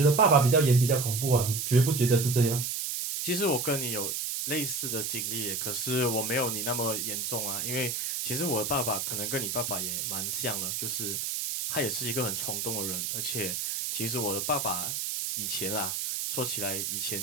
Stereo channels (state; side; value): noise; right; hiss, 2 dB below the sound